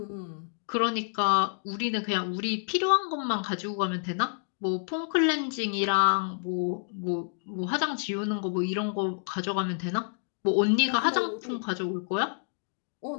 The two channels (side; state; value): right; silent; digital silence